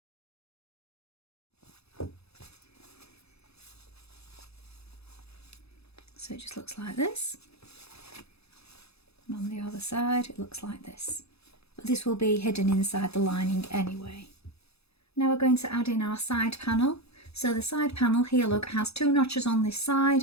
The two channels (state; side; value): late; right; 0.78 ms